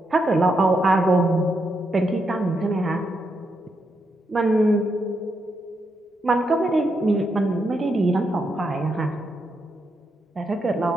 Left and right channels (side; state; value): both; normal; correlation 0.81